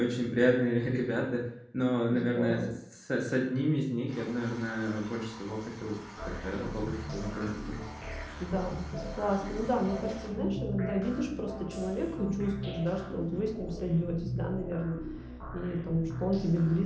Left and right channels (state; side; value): identical; both; correlation 1.00